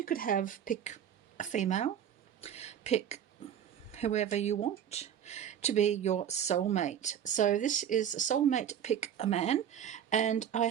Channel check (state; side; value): quieter; left; 9.4 dB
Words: could have pick a female, pick whoever you want to be your soulmate. So this is a soulmate pick a man, and I